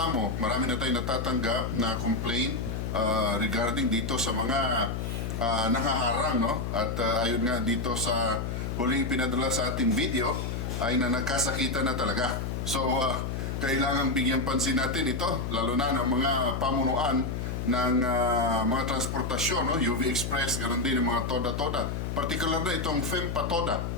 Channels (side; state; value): left; noise; hum, 3 dB below the sound